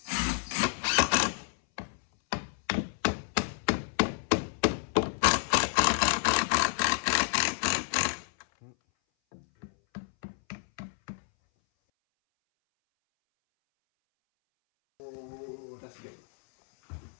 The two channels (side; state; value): right; silent; 58 dB below the other